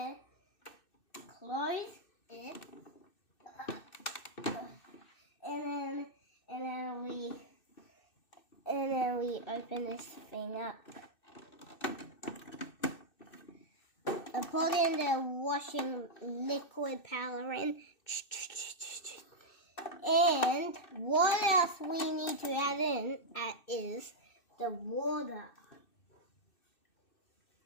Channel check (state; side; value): late; right; 2.6 ms